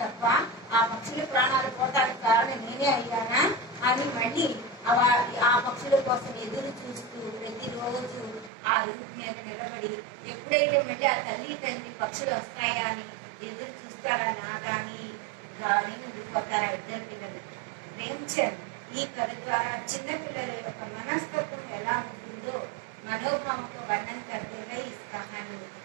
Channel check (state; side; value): drops out; left; at 8.5 s